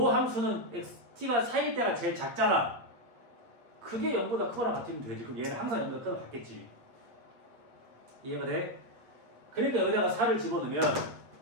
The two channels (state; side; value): late; left; 8.5 ms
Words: 함수는 t가 4일 때가 제일 작잖아. 그게 0보다 크거나 같으면 되지. 그럼 얘는 항상 0보다 크거나 같겠지. 이해가 돼? 그러니까 여기다가 4를 집어넣으면